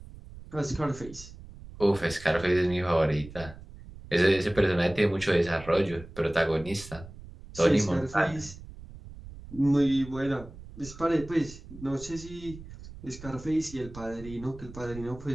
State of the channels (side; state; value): right; noise; rumble, 16 dB below the sound